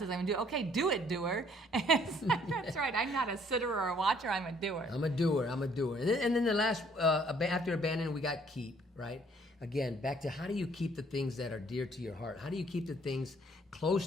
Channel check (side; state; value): both; normal; correlation 0.62